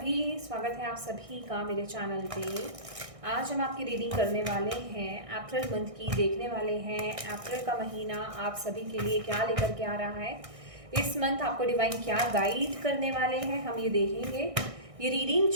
स्वागत है आप सभी का मेरे चैनल पे। आज हम आपकी रीडिंग करने वाले हैं, अप्रैल मंथ की देखने वाले हैं। अप्रैल का महीना आप सभी के लिए क्या लेकर के आ रहा है, इस मंथ आपको डिवाइन क्या गाइड करने वाले हैं, हम ये देखेंगे। ये रीडिंग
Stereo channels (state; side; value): late; left; 1.6 ms